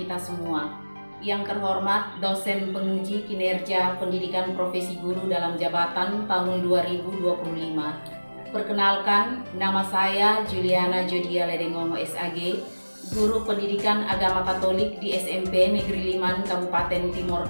semua. Yang terhormat dosen penguji kinerja pendidikan profesi guru dalam jabatan tahun 2025. Perkenalkan, nama saya Juliana Jodia Ledengongo SAG, guru pendidikan agama Katolik di SMP Negeri Liman, Kabupaten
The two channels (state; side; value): inverted; both; correlation -1.00